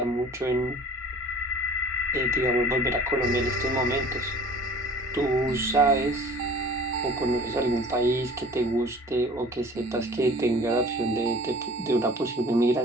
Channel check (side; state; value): both; normal; correlation 0.45